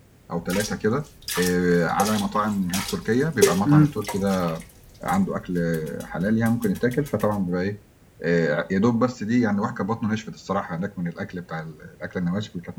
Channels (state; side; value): identical; both; correlation 1.00